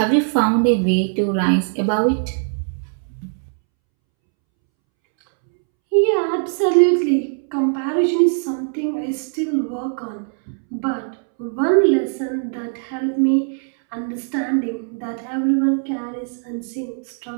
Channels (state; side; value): silent; left; 65 dB below the other